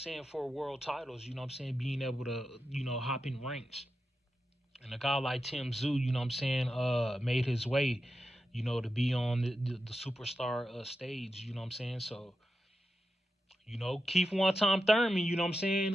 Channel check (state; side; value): normal; both; correlation 0.89